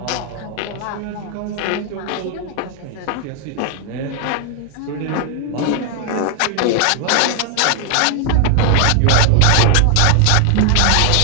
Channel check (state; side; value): different; both; correlation 0.00